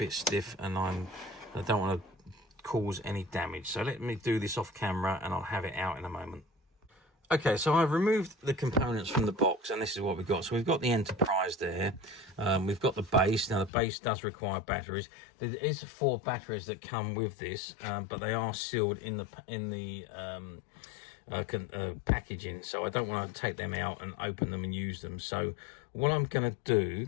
stiff and I don't want to cause any damage. So let me do this off camera and I'll have it out in a moment. Okay, so I've removed the components from the box and this is what we've got. So we've got the Enterprise there. We've got the base. Now the base does require batteries. There is 4 batteries that come with this, but they are sealed in the packaging. So I don't want to take them out and open them and use them. So what I'm going to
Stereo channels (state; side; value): drops out; right; at 13.7 s